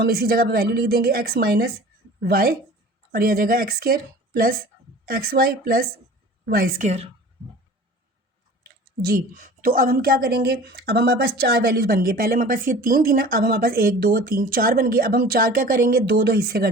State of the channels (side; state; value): both; normal; correlation 0.42